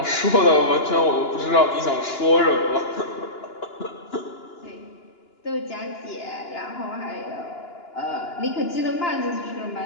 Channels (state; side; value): late; right; 2.9 ms